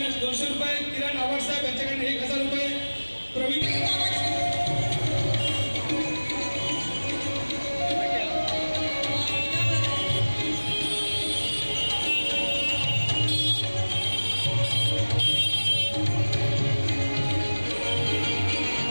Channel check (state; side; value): inverted; both; correlation -1.00